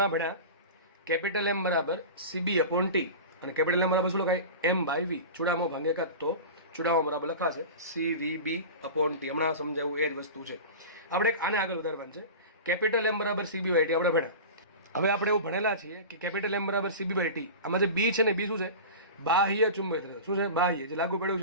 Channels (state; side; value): inverted; both; correlation -0.31